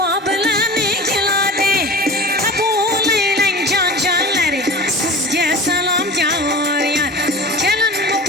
bilan keladi, qabul aylang jon jonlari, sizga salom yor yor. Kelin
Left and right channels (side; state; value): both; normal; correlation 0.35